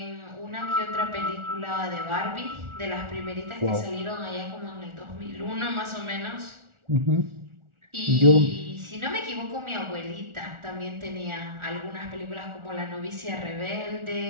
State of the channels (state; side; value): late; left; 1.4 ms